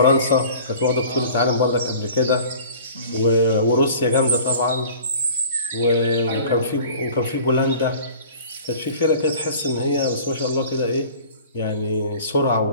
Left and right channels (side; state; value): both; inverted; correlation -0.44